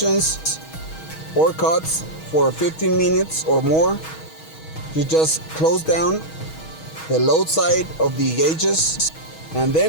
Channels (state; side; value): late; right; 6.3 ms